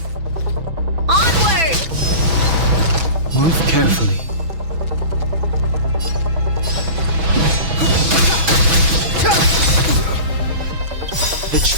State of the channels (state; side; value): late; left; 6.1 ms